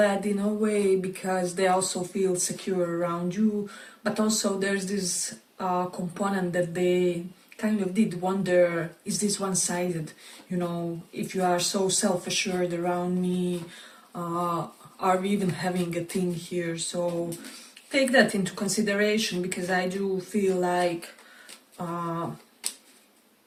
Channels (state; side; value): identical; both; correlation 1.00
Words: in a way because they also feel secure around you, but also there's this component that they kind of did wonder, is this one-sided? You know, if you are so self-assured around me, are we even having a thing here? So take that into consideration, because I do feel like